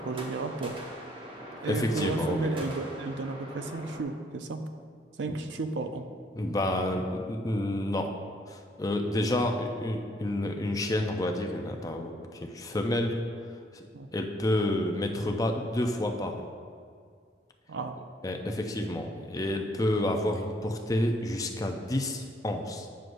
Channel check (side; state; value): both; normal; correlation 0.66